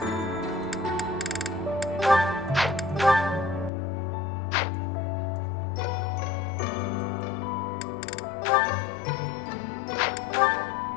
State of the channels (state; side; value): drops out; right; at 3.7 s